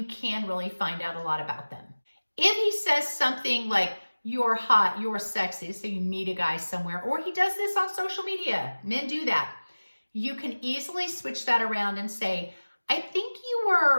can really find out a lot about them. If he says something like, you're hot, you're sexy, so you meet a guy somewhere, or he does this on social media, men do that, you can easily switch that around and say, I think you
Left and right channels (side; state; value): both; inverted; correlation -1.00